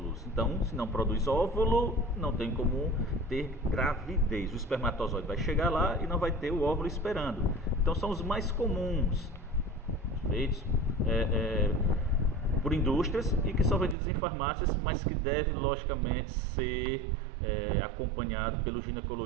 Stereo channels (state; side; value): drops out; left; at 14.0 s